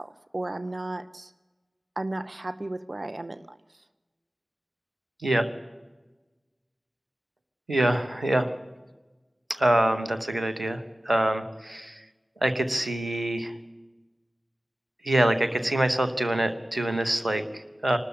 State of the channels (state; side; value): normal; both; correlation 0.96